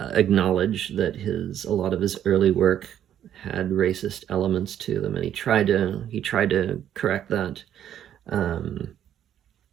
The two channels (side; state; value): left; quieter; 10.4 dB